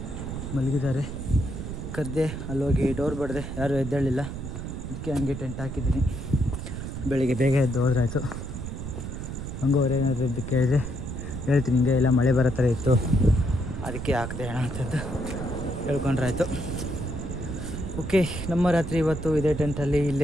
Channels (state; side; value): noise; right; rumble, 7 dB below the sound